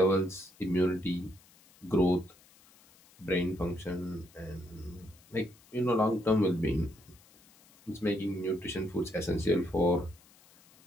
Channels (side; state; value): left; noise; hiss, 27 dB below the sound